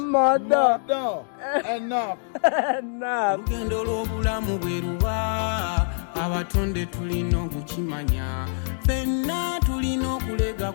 Enough. Lugendo lw'obulamu bwe luba abatonde tulina okukimanya ffenna tulina okulega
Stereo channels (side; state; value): right; silent; digital silence